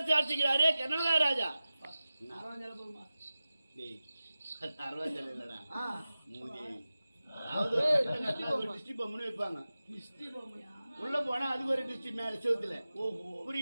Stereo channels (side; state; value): both; inverted; correlation -0.95